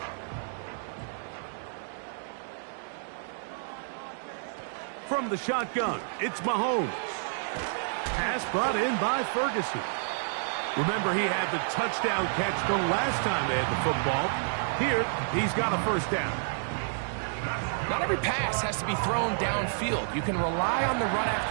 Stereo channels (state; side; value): silent; left; digital silence